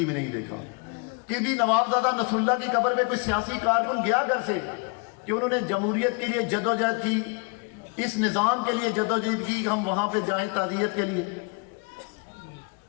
میں نہیں دیکھا۔ کبھی نوابزادہ نصر اللہ کی قبر پہ کوئی سیاسی کارکن گیا گھر سے کہ انہوں نے جمہوریت کے لیے جدوجہد کی، اس نظام کے لیے جدوجہد کی، ہم وہاں پہ جائیں تعزیت کے لیے؟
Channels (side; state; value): right; quieter; 31.7 dB